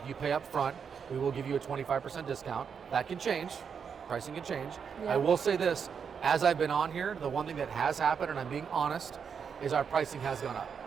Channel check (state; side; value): quieter; left; 6.7 dB